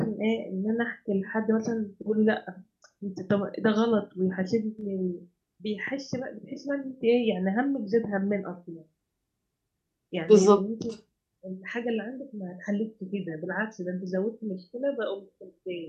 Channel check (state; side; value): identical; both; correlation 1.00